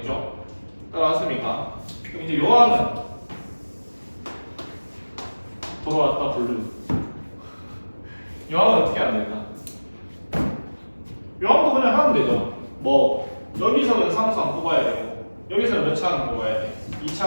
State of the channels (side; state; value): both; inverted; correlation -1.00